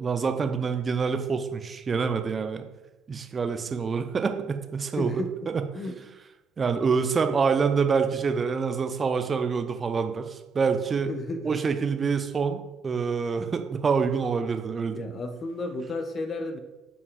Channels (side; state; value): left; quieter; 4.8 dB